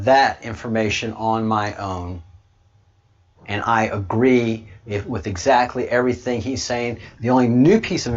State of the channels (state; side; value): identical; both; correlation 1.00